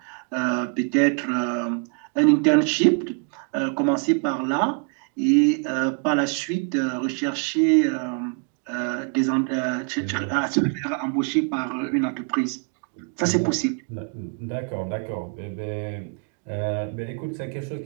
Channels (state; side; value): quieter; left; 39.8 dB